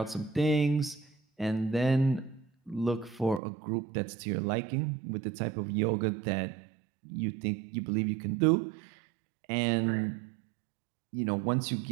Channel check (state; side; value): drops out; left; at 3.4 s